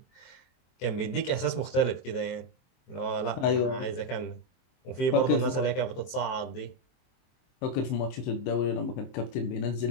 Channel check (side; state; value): right; late; 23 ms